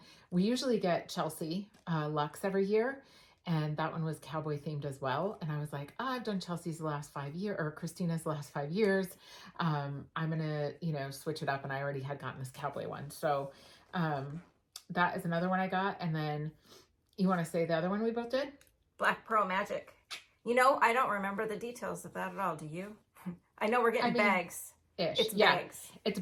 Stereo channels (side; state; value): both; identical; correlation 1.00